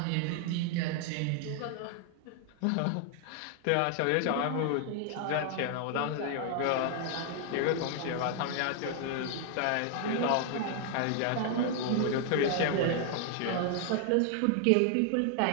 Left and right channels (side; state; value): both; different; correlation 0.00